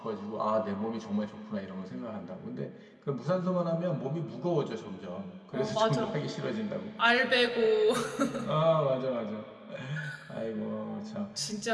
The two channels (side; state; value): both; identical; correlation 1.00